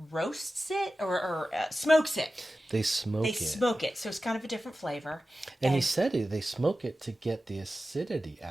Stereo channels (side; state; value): both; normal; correlation 0.94